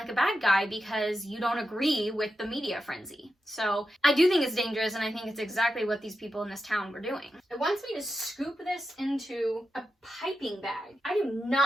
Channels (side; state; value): both; normal; correlation 0.89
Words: a bad guy because you don't agree with the media frenzy. So I do think it's dangerous, and I think it's exactly what these people in this town were doing. It wants me to scoop this into a piping bag. I do